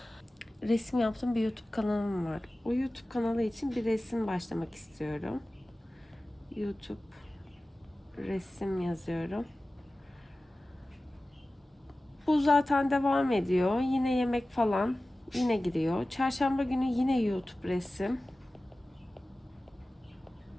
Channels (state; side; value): normal; both; correlation 0.97